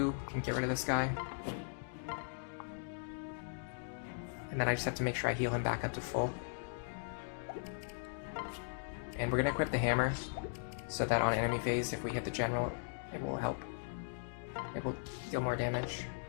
can get rid of this guy. And then I just have to make sure I heal him back up to full. And we're gonna equip the hammer so that on enemy phase, if we hit the general, it will help. It will deal more damage.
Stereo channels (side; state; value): right; silent; digital silence